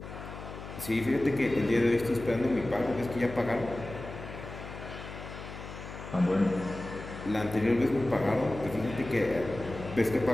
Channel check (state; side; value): noise; left; hum, 11 dB below the sound